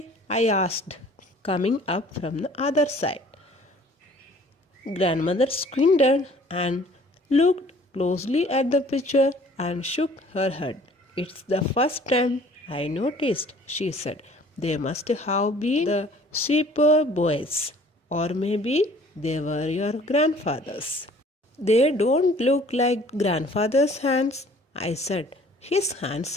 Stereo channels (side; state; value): both; normal; correlation 0.53